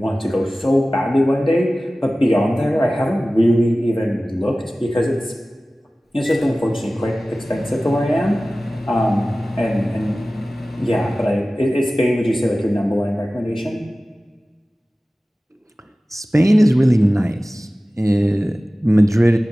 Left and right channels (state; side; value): normal; both; correlation 0.97